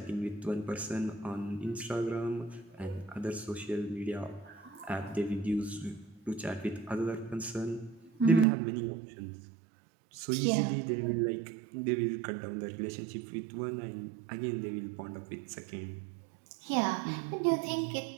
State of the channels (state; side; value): drops out; left; at 8.5 s